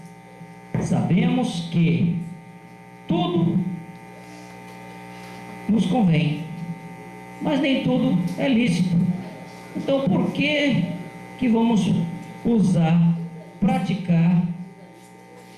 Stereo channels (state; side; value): identical; both; correlation 1.00